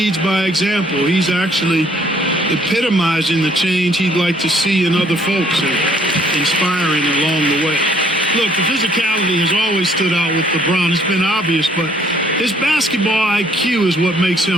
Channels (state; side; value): normal; both; correlation 0.63